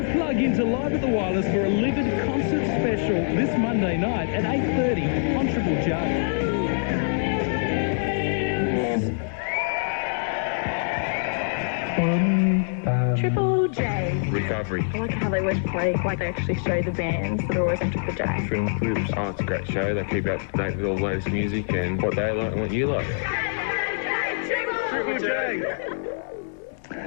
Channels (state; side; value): silent; right; digital silence